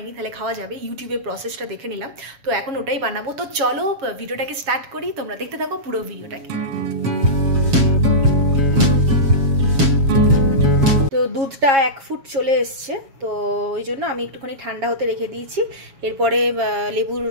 তাহলে খাওয়া যাবে। ইউটিউবে প্রসেসটা দেখে নিলাম, তো এখন ওটাই বানাবো। তো চলো ভিডিওটাকে স্টার্ট করি, তোমরা দেখতে থাকো পুরো ভিডিওটাকে। তো দুধটা 1 ফুট চলে এসছে, তো ওই জন্য আমি একটুখানি ঠান্ডা হতে রেখে দিয়েছি। এরপরে লেবুর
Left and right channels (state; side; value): late; left; 7.2 ms